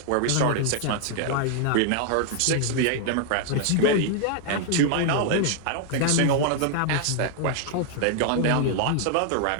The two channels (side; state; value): both; different; correlation 0.00